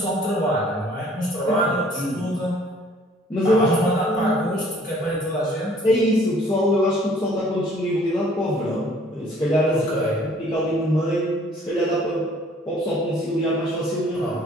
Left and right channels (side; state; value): both; normal; correlation 0.57